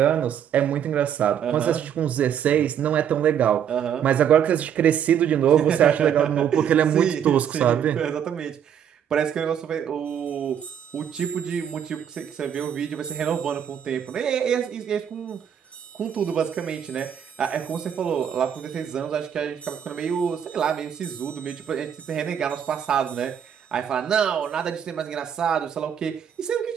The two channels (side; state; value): left; quieter; 8.8 dB